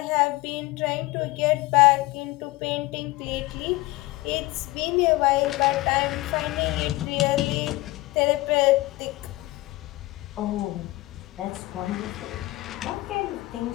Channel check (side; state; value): right; quieter; 19.8 dB